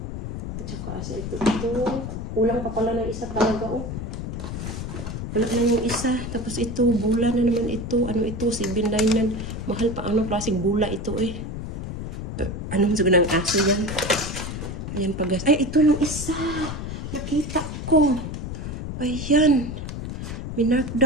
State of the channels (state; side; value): noise; left; rumble, 6 dB below the sound